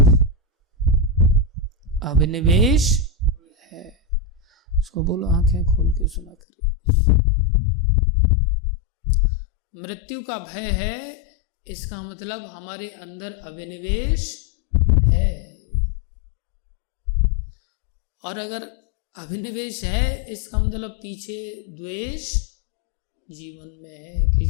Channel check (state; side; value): drops out; right; at 6.4 s